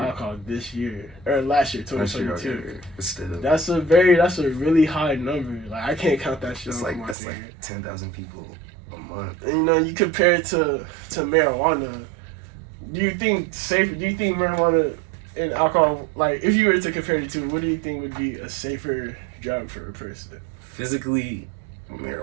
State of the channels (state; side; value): drops out; left; at 7.2 s